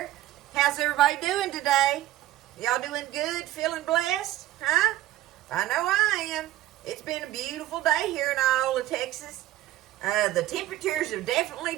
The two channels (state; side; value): quieter; left; 14.9 dB